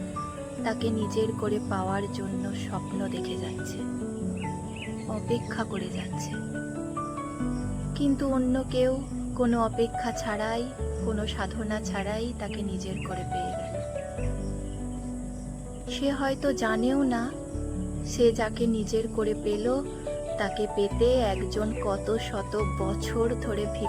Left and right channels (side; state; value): both; identical; correlation 1.00